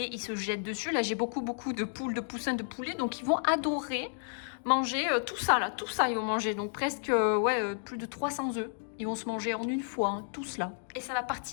ils se jettent dessus. Là, j'ai beaucoup de poules, de poussins, de poulets, donc ils vont adorer manger tout ça, ils vont manger. Donc presque, plus de 300 œufs. Ils vont se manger en une fois, hein, tout cela. Et ça va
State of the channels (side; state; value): right; silent; digital silence